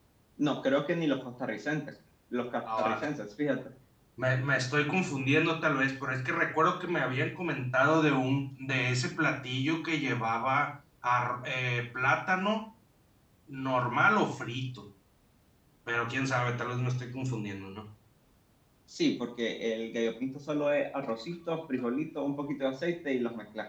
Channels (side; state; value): both; identical; correlation 1.00